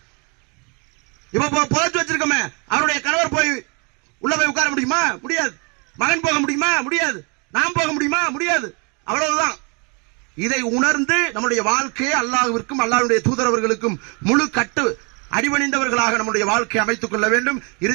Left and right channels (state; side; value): quieter; left; 32.5 dB